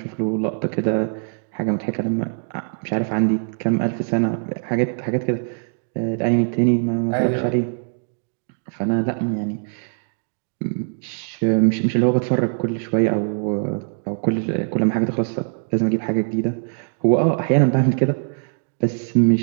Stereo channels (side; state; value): left; silent; digital silence